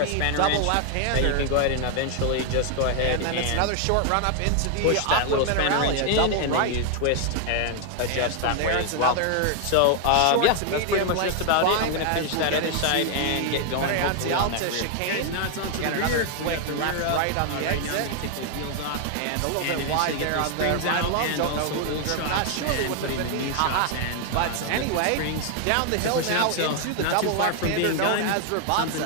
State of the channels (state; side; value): different; both; correlation 0.00